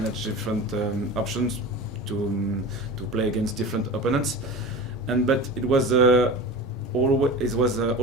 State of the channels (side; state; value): both; normal; correlation 0.32